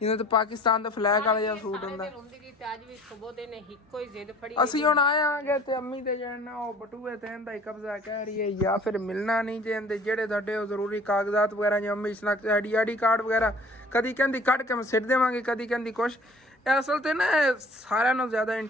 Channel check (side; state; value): both; normal; correlation 0.50